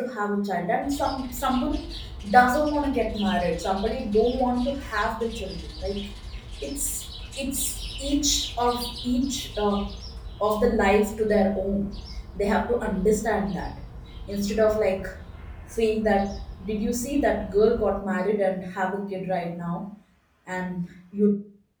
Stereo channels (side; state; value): both; identical; correlation 1.00